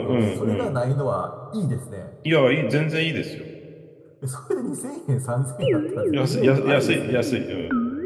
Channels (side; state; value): both; identical; correlation 1.00